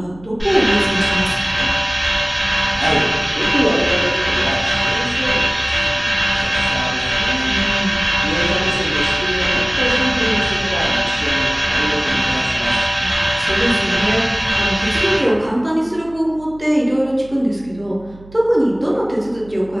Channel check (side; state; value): right; noise; hum, 21 dB below the sound